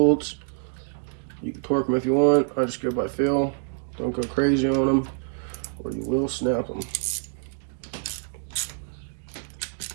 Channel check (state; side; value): silent; left; 61 dB below the other